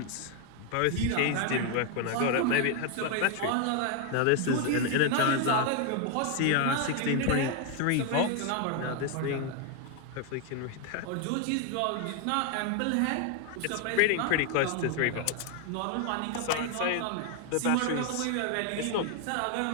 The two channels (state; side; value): different; both; correlation 0.01